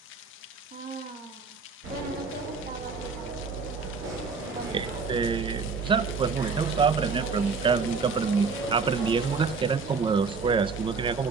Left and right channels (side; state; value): left; quieter; 4.8 dB